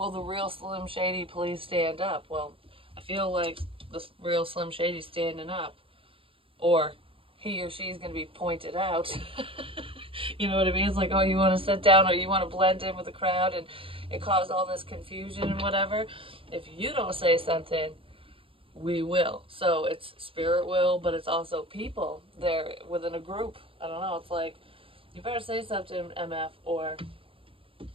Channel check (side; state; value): left; late; 0.26 ms